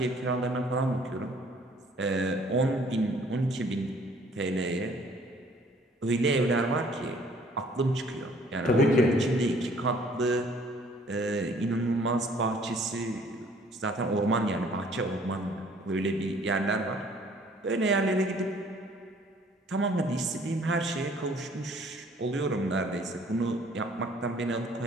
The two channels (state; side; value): normal; both; correlation 0.58